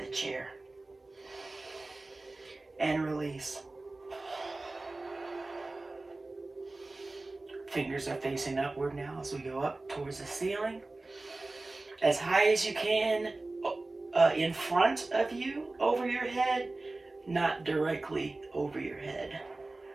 chair. And release. Fingers are facing upward now as we go up towards the ceiling. As high as you can, in front of you, over your head, not directly over your head.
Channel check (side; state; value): left; quieter; 3.1 dB